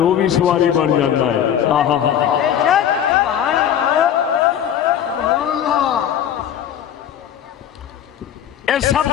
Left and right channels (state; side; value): quieter; right; 9.8 dB